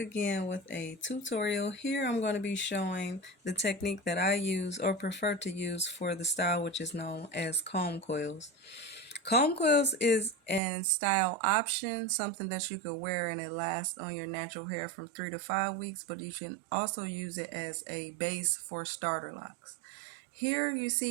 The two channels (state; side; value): drops out; left; at 10.6 s